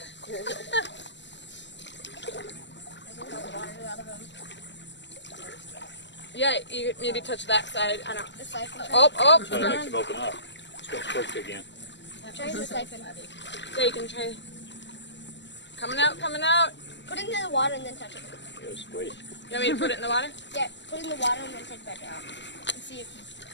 Yeah, you maybe touch that side. I don't. That makes them open up. It's gonna push again. Try the siphon. Yeah, you can try. Coming out, coming out. Put it in the water and then touch it. It was squeeze. You want me to put it in the water? Yeah, put it in the water and then take it back out. And see if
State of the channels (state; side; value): late; right; 0.52 ms